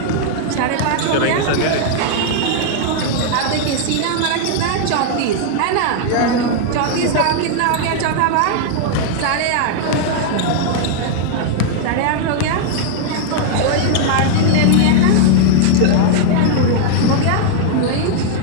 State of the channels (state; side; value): different; both; correlation -0.01